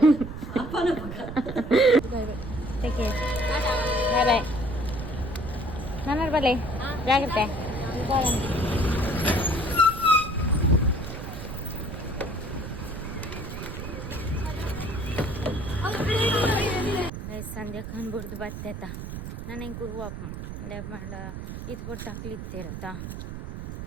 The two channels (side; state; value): right; noise; rumble, 8 dB below the sound